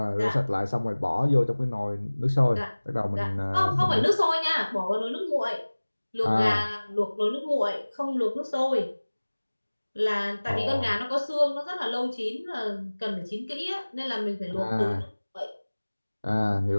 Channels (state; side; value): inverted; both; correlation -1.00